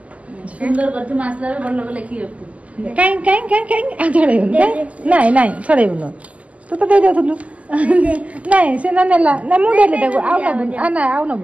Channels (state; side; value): late; left; 0.069 ms